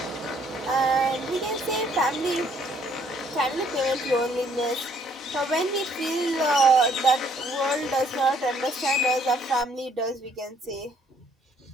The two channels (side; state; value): both; normal; correlation 0.64